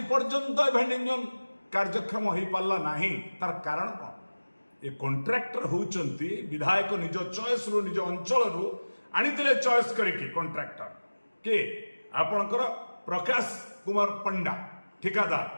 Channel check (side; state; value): both; inverted; correlation -1.00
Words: पर्यंत भेंडिंग जोन कार्यक्षम हो पारा नहीं। तार कारण कौन ये कॉन्ट्रैक्टर होउचंती विधायक निज चॉइस रो निज अंचल रो आनीतिले चॉइस करके कॉन्ट्रैक्टर के आपणकर प्रकाश कुमार पंडा ठिकादार